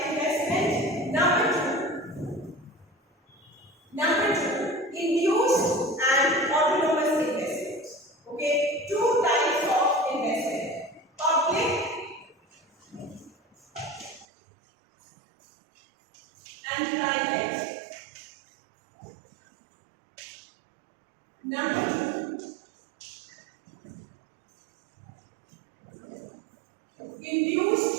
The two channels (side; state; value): left; drops out; at 14.2 s